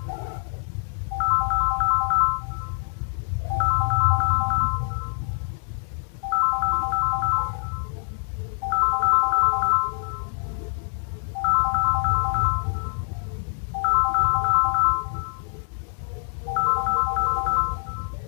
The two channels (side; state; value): right; silent; digital silence